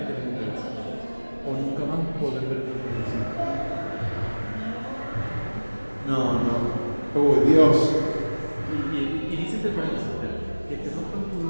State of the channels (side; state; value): both; inverted; correlation -1.00